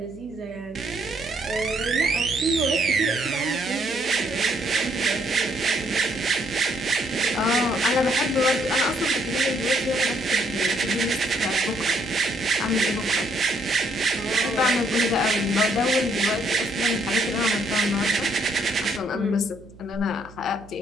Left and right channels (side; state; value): right; noise; hum, 22 dB below the sound